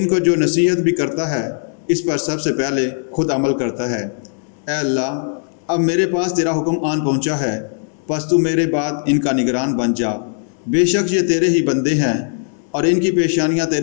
کو جو نصیحت بھی کرتا ہے اس پر سب سے پہلے خود عمل کرتا ہے۔ اے اللہ، اب میرے پاس تیرا حکم آن پہنچا ہے، پس تو میرے بعد ان کا نگران بن جا۔ بے شک یہ تیرے ہی بندے ہیں اور ان کی پیشانیاں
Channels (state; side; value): silent; right; digital silence